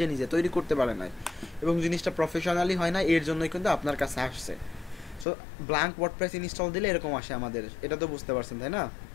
নিজে তৈরি করতে পারে নাই এবং জিনিসটা প্রফেশনালি হয় না, এর জন্যই কিন্তু আপনার কাছে আসছে। সো ব্ল্যাঙ্ক ওয়ার্ডপ্রেস ইনস্টল দিলে এরকম আসে আমাদের, এটা তো বুঝতে পারছেন তাই না?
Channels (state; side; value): drops out; right; at 5.2 s